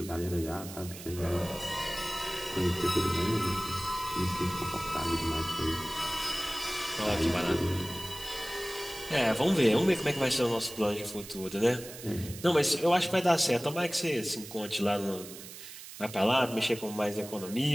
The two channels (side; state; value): right; noise; hiss, 13 dB below the sound